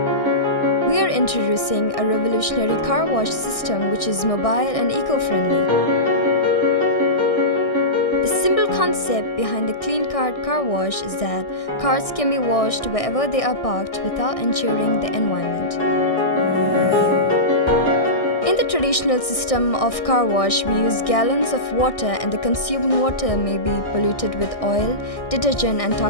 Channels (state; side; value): late; right; 1.6 ms